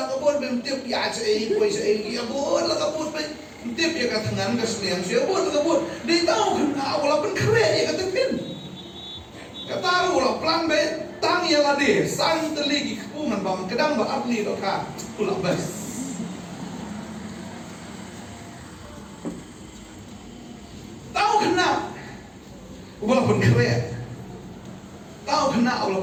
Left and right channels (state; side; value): identical; both; correlation 1.00